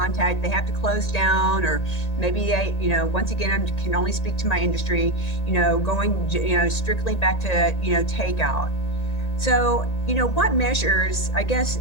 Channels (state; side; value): late; right; 1.8 ms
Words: they have to close down, or maybe they, once again, I can only speak to my industry, going, strictly back to, takeout. So, what measures, I guess,